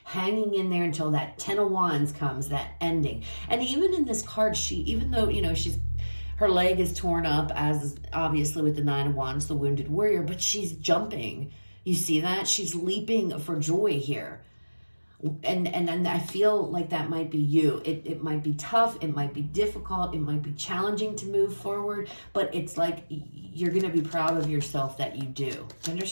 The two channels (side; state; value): both; inverted; correlation -1.00